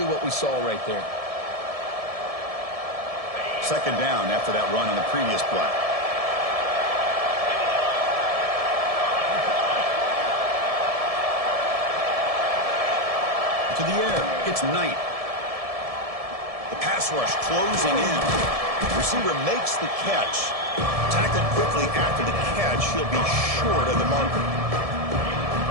what we saw right there. Second down after that run on the previous play. To the air, it's Knight. The pass rush closing in. Receiver makes the catch. Tackled quickly after the catch. He'll be short of the marker.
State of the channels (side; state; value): left; late; 1.7 ms